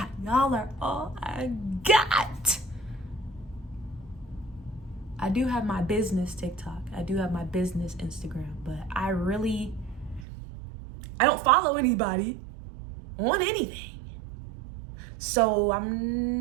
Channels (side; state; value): left; drops out; at 10.2 s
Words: Y'all are all I got. I do have my business TikTok. I do have my business Instagram, but I don't follow anybody on anything. So